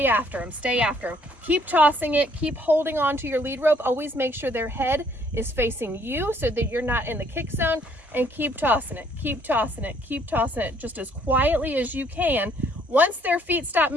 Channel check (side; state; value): both; normal; correlation 0.64